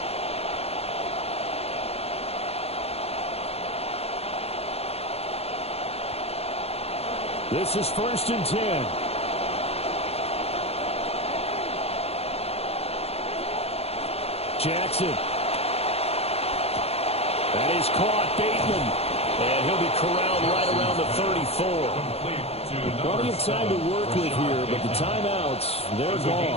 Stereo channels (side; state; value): right; late; 0.29 ms